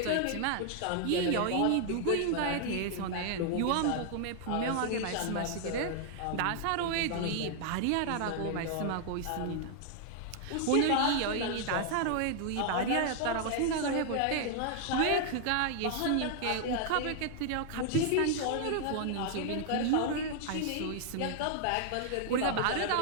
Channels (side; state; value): both; different; correlation 0.00